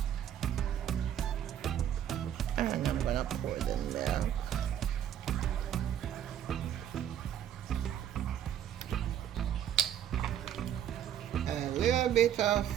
And I'm gonna pour the milk. A little bit of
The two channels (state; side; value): quieter; left; 10.2 dB